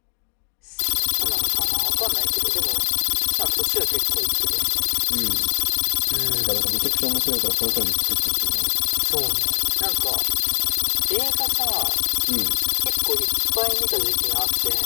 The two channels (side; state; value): right; silent; 56 dB below the other